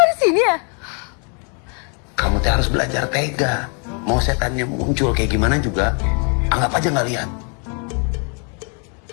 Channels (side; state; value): right; quieter; 39.0 dB